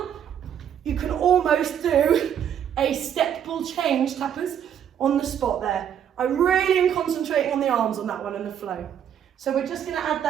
you can almost do a step ball change, tappers, on the spot there. I really am concentrating on the arms on that one and the flow. So we're just going to add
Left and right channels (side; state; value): left; quieter; 9.2 dB